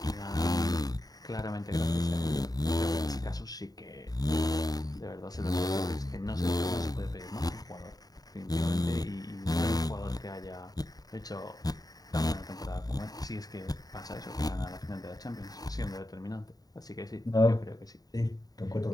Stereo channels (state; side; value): late; right; 0.18 ms